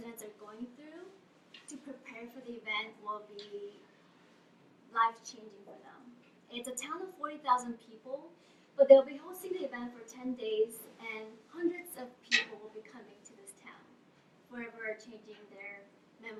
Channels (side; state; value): both; identical; correlation 1.00